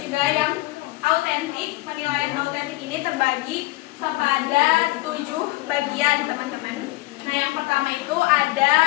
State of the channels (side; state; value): right; quieter; 20.6 dB